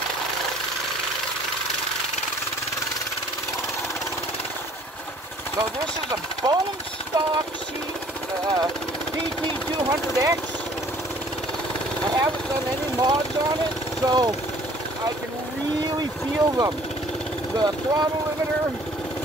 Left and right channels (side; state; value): both; normal; correlation 0.55